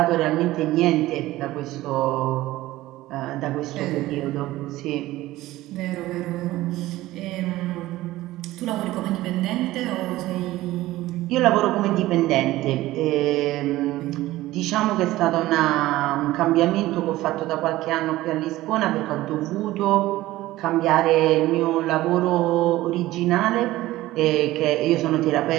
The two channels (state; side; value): quieter; left; 16.7 dB